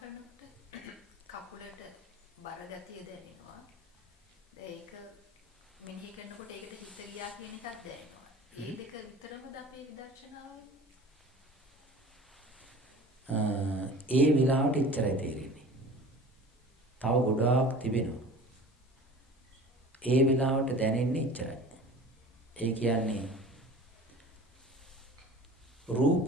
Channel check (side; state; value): both; normal; correlation 0.41